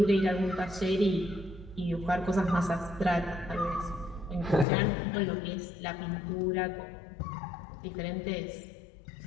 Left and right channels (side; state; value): right; drops out; at 4.7 s